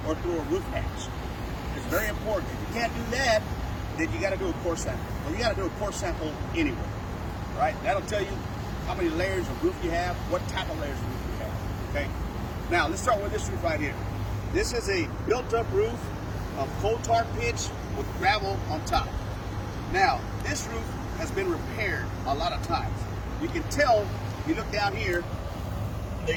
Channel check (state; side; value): identical; both; correlation 1.00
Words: or through a roof hatch. It's very important. If you can't do that, then you got to do a core sample. Well, you got to do a core sample anyway, right? That'll tell you how many layers of roof you have, what type of layers of roof you have. Okay. Now let's start with this roof right here. This is a built-up roof of coal tar pitch with gravel on top. Now this roof has been repaired a lot of times. You can tell if you look down here,